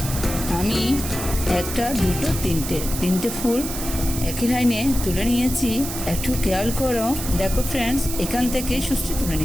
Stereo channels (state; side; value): noise; right; hiss, 7 dB below the sound